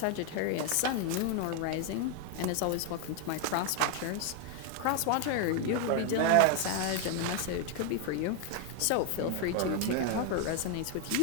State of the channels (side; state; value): both; different; correlation 0.01